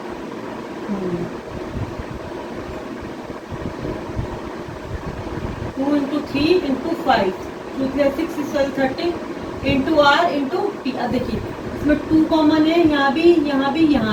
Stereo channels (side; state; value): both; identical; correlation 1.00